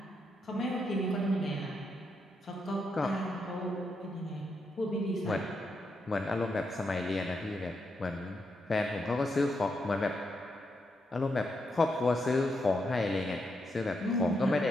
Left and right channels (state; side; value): normal; both; correlation 0.82